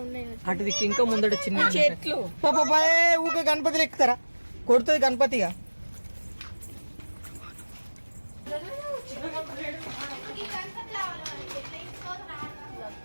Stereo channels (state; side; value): inverted; both; correlation -1.00